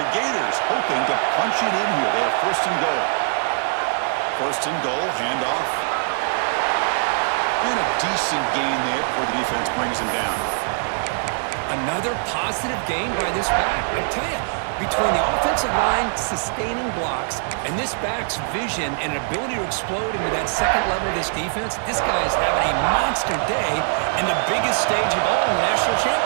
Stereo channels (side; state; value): left; silent; digital silence